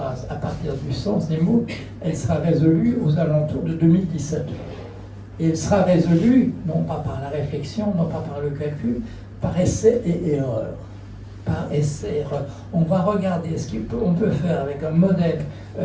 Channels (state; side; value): identical; both; correlation 1.00